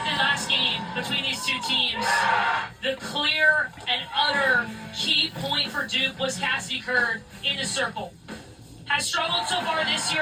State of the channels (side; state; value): both; identical; correlation 1.00